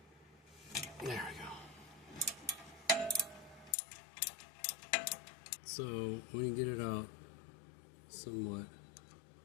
There we go. So when you get it out somewhat,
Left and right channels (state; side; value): drops out; right; at 3.8 s